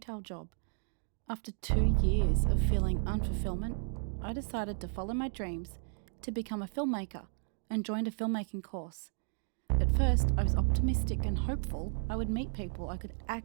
job. After 2 years of feeling unfulfillment, I decided to follow my dreams to become a filmmaker and joined a filmmaking course. At first, I was optimistic and hopeful I would meet people I could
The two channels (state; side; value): silent; left; 55 dB below the other